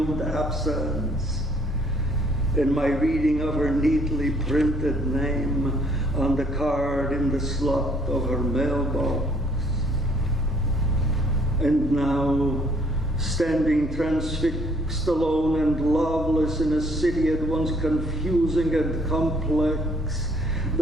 absence, and my reading of her neatly printed name on the card in the slot of her mailbox. And now, standing transfixed, alone and loveless in a city at once confusing and complex,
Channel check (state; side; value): normal; both; correlation 0.62